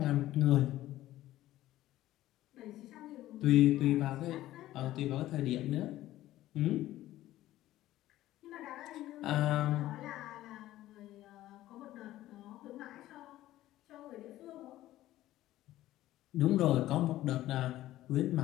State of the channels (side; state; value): right; quieter; 14.9 dB